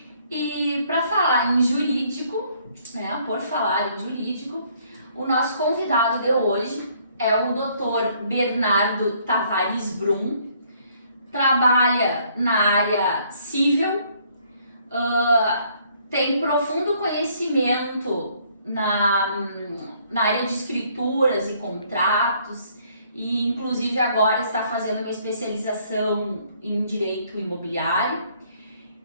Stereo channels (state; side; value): inverted; both; correlation -0.64